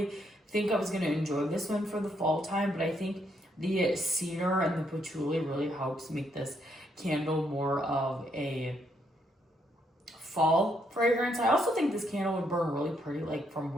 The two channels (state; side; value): normal; both; correlation 0.74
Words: think I was going to enjoy this one for the fall time, but I think the cedar and the patchouli really helps make this candle more of a fall fragrance. I also think this candle would burn really pretty like from